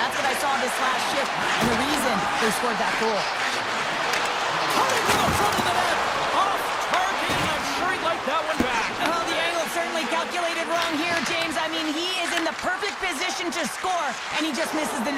what I saw this last shift, and the reason they scored that goal. Cutting to the front of the net! Off target, and I'm sure he'd like that one back. Well, the angle certainly calculated wrong here, James. I mean, he is in the perfect position to score, and he just misses the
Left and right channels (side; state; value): both; identical; correlation 1.00